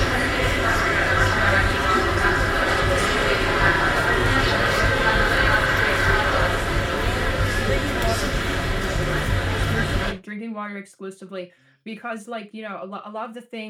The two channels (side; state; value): both; identical; correlation 1.00